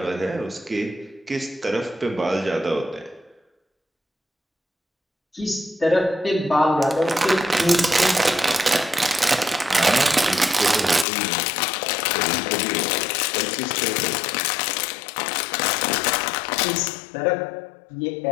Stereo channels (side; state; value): right; drops out; at 11.1 s